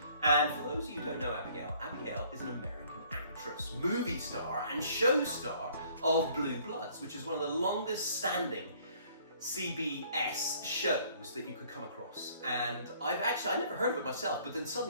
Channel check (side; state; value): both; inverted; correlation -0.59